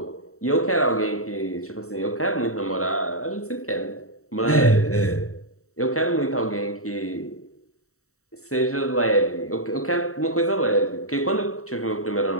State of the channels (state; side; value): late; right; 0.64 ms